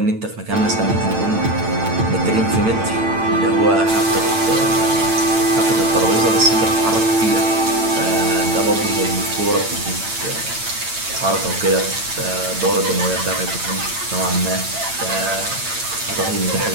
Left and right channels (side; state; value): left; late; 8.9 ms